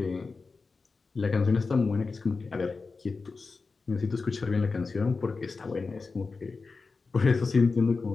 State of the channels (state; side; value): quieter; right; 4.3 dB